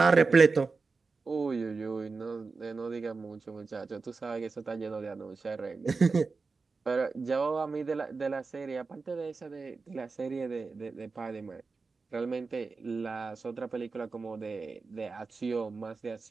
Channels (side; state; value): left; quieter; 4.3 dB